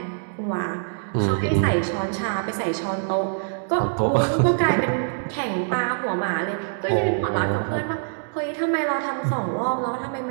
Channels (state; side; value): silent; left; digital silence